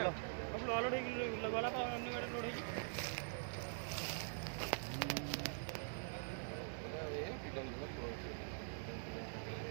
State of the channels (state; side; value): silent; left; digital silence